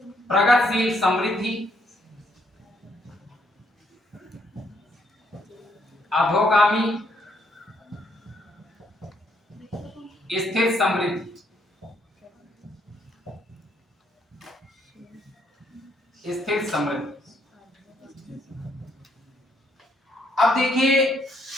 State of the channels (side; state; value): both; normal; correlation 0.71